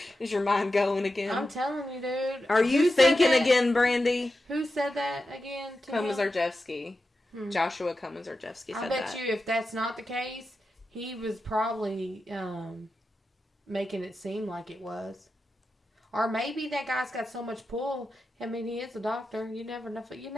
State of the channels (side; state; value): both; normal; correlation 0.91